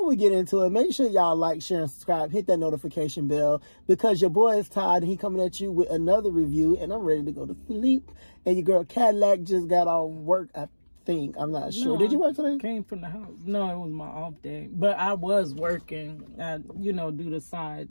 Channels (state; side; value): inverted; both; correlation -1.00